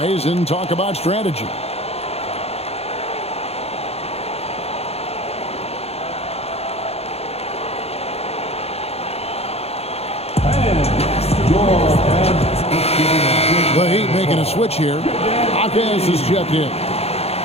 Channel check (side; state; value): right; late; 0.30 ms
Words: and talk about strategy. The Heat making a switch here. Hawkins is checked in.